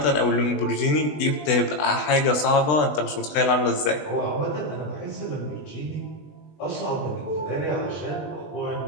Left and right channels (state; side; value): late; right; 20 ms